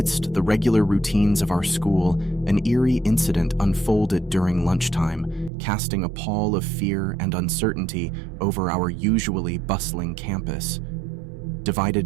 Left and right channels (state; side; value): drops out; left; at 5.5 s